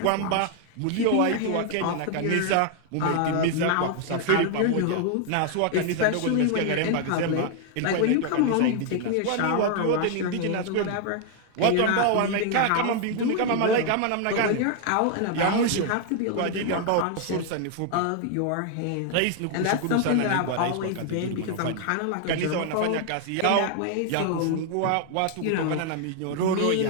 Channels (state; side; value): different; both; correlation 0.00